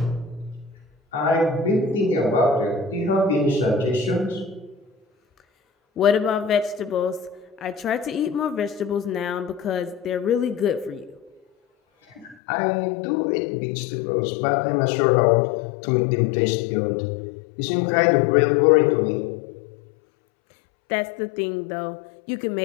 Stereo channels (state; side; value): drops out; right; at 12.4 s